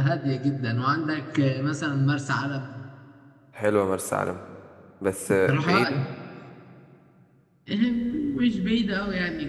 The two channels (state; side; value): identical; both; correlation 1.00